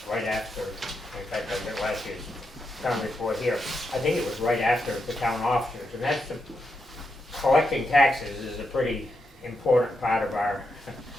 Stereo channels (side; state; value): both; normal; correlation 0.84